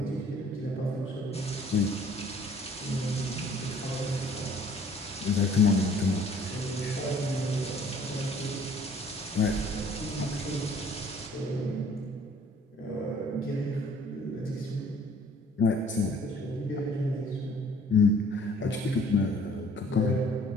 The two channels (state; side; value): normal; both; correlation 0.56